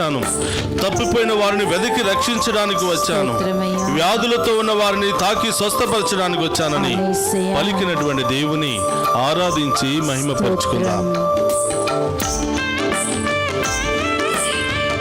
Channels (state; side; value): identical; both; correlation 1.00